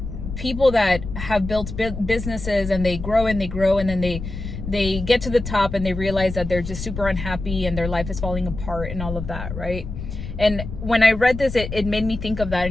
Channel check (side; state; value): left; noise; rumble, 8 dB below the sound